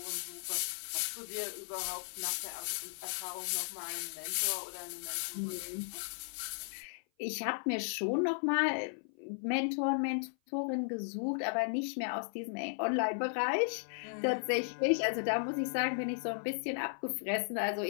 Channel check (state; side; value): silent; right; 54 dB below the other